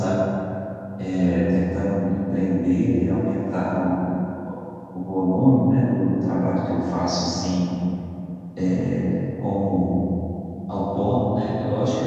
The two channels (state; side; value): identical; both; correlation 1.00